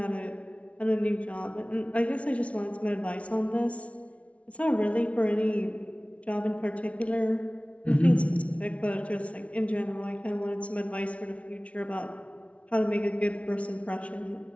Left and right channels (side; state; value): right; late; 0.063 ms